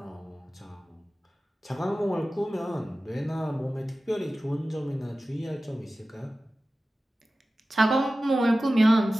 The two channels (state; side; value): normal; both; correlation 0.95